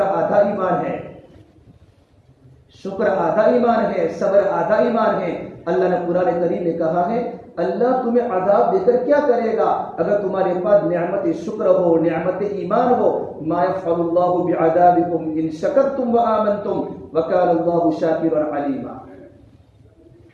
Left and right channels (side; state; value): both; identical; correlation 1.00